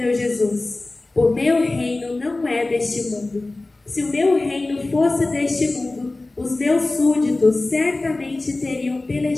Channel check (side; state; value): right; quieter; 3.0 dB